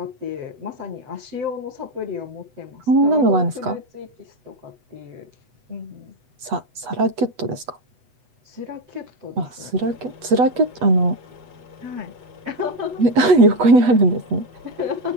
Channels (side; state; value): left; late; 8.3 ms